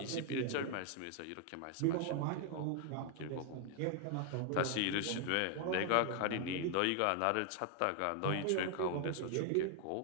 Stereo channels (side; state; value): both; different; correlation 0.01